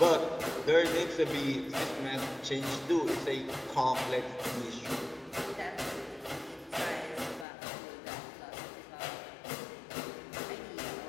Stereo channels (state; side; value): drops out; right; at 7.5 s